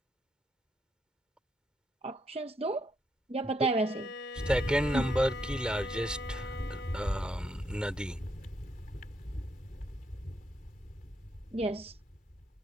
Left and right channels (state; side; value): normal; both; correlation 0.77